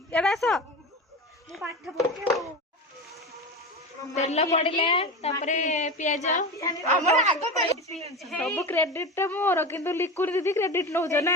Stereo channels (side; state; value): both; normal; correlation 0.26